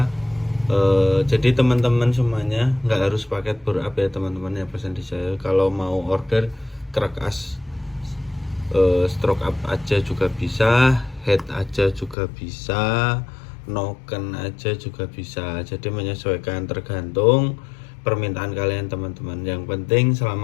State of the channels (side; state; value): right; drops out; at 12.2 s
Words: Jadi teman-teman semuanya nggak harus paket backup ya teman-teman ya, pesan di saya. Kalau mau order crack as stroke up aja juga bisa, head aja juga bisa, noken aja juga bisa. Jadi menyesuaikan tergantung permintaan kalian teman-teman. Yang penting